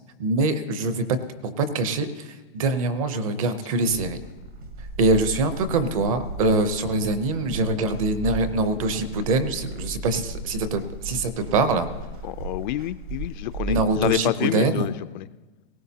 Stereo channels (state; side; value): normal; both; correlation -0.07